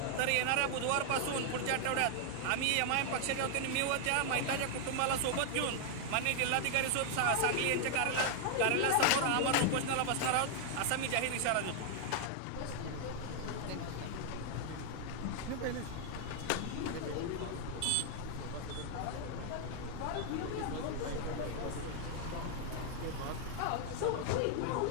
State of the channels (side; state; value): both; different; correlation 0.00